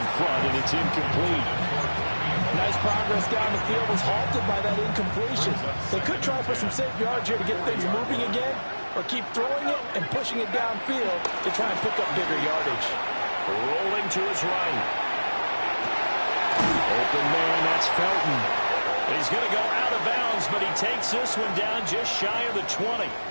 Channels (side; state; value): both; inverted; correlation -1.00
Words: front, and it's incomplete. Nice progress down the field was halted by that incompletion. They could try for some safe yards here to get things moving again, or keep throwing it and pushing it downfield to try and pick up bigger yardage. Rolling to his right. Open man, that's Felton. He's going to go out of bounds, but he takes this one down just shy of the 20.